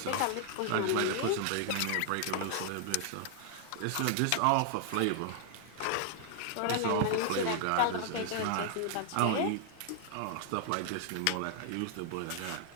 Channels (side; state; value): both; different; correlation 0.00